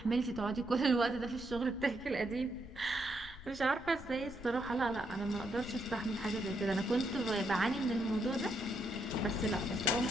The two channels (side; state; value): left; noise; rumble, 15 dB below the sound